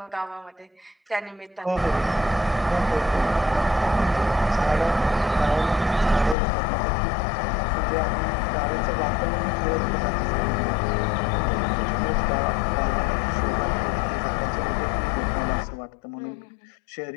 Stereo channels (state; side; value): drops out; right; at 6.4 s